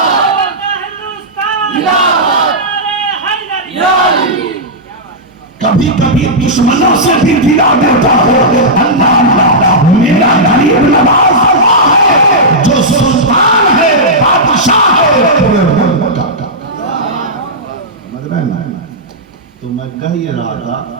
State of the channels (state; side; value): normal; both; correlation -0.11